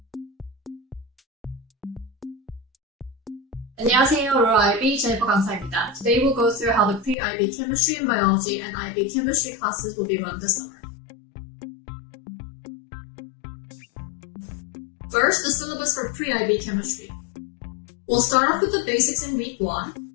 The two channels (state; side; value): drops out; right; at 7.2 s